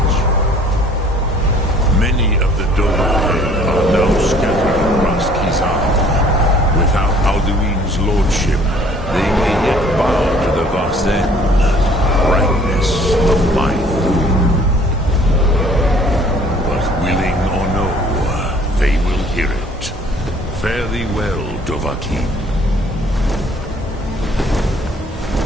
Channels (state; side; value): normal; both; correlation 0.56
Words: Many of the Dovahe are now scattered across Kizan. Without Alduin's lordship, they may yet bow to the Vasen, brightness of my throne. But willing or no, they will hear it. Fare thee well, Dovahkiin.